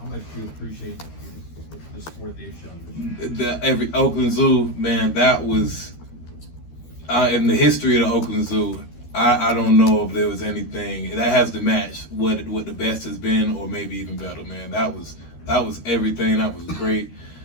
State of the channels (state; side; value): late; right; 13 ms